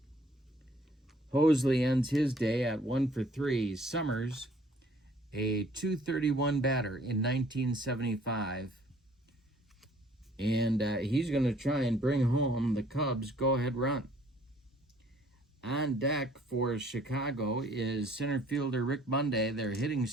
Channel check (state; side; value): normal; both; correlation 0.58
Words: Hosley ends his day at 1 for 3. Summers, a .231 batter in 1975. And he's going to try and bring home the Cubs' go-ahead run. On deck for Chicago is center fielder Rick Monday, their hitting